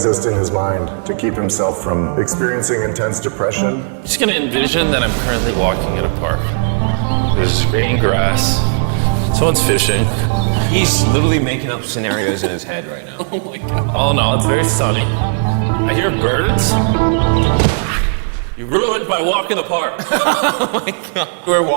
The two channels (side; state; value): left; silent; digital silence